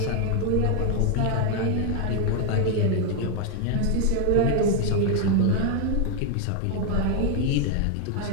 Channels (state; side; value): different; both; correlation 0.01